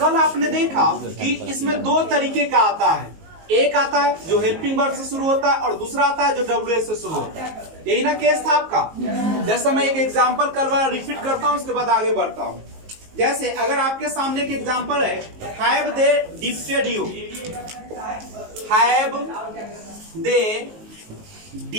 आपने देखा कि इसमें दो तरीके का आता है। एक आता है जो हेल्पिंग वर्ब से शुरू होता है और दूसरा आता है जो WH से शुरू होता है। यही ना केस था आपका। जैसे मैं एक एग्जांपल कल वाला रिपीट करता हूं, उसके बाद आगे बढ़ता हूं। जैसे अगर आपके सामने एक एग्जांपल है, have they defeated you, have they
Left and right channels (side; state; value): left; late; 19 ms